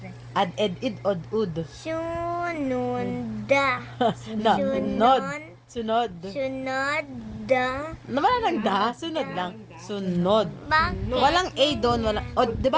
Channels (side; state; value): both; identical; correlation 1.00